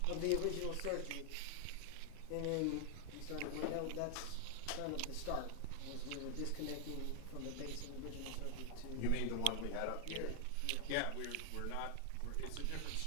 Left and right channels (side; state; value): both; different; correlation 0.00